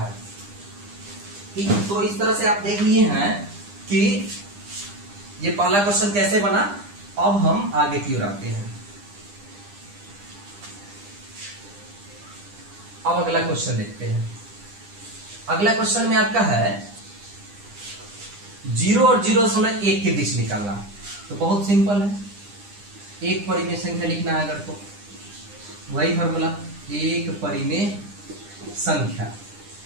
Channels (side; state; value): left; late; 9.9 ms